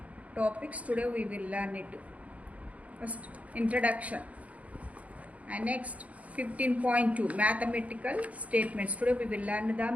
topics. Today we will learn it. First introduction. And next 15.2 mathematical statements. Today we will learn the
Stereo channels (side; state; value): left; late; 0.068 ms